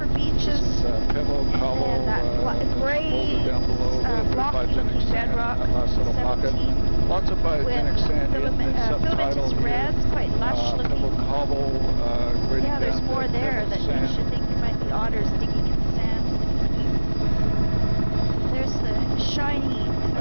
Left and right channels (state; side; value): inverted; both; correlation -1.00